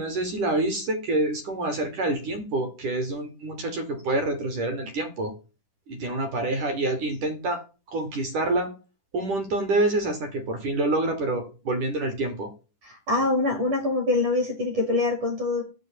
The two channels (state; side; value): late; left; 10 ms